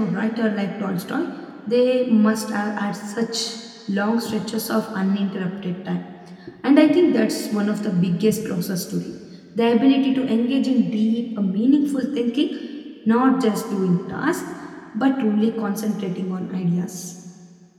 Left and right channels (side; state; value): both; identical; correlation 1.00